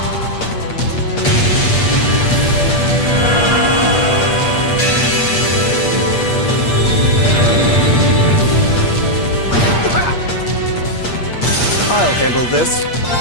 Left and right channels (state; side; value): late; right; 8.4 ms